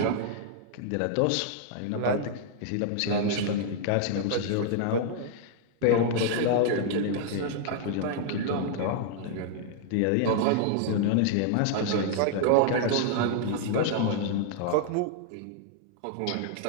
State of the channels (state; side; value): different; both; correlation -0.01